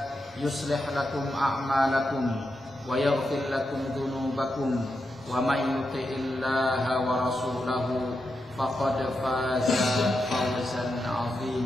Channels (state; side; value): normal; both; correlation 0.86